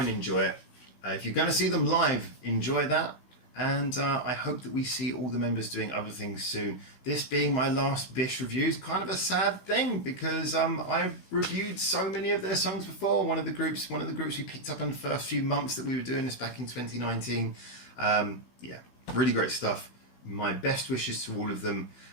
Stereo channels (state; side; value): late; right; 16 ms